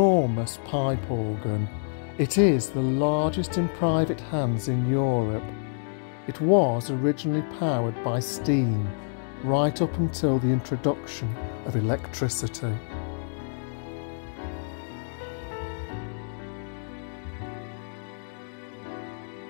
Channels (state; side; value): silent; right; digital silence